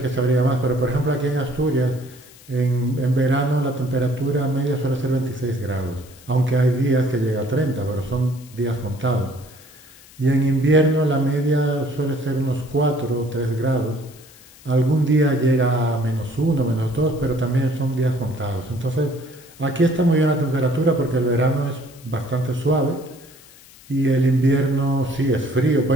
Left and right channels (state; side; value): noise; left; hiss, 23 dB below the sound